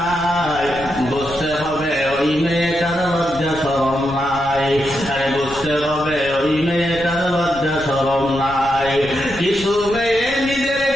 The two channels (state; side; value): noise; left; rumble, 15 dB below the sound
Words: বুঝতে হবে ওই মেয়েটার লজ্জা শরম নাই। আরে বুঝতে হবে ওই মেয়েটার লজ্জা শরম নাই। কিছু মেয়ে নিজের